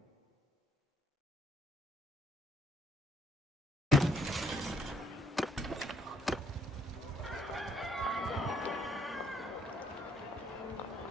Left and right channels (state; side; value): normal; both; correlation 0.67